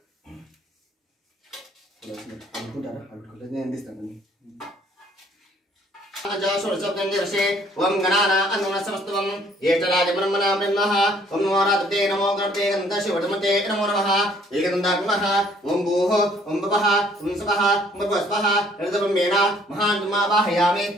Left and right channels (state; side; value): normal; both; correlation 0.61